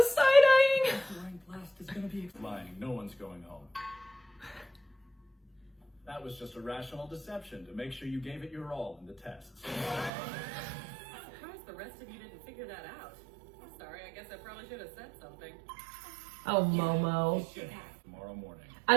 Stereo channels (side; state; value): left; drops out; at 10.1 s